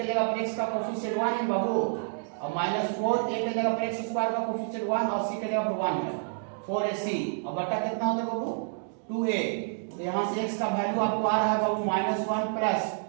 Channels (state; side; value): silent; left; digital silence